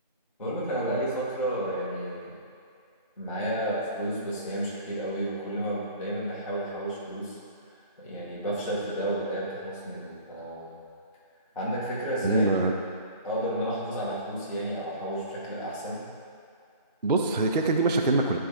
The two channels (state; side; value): inverted; both; correlation -0.43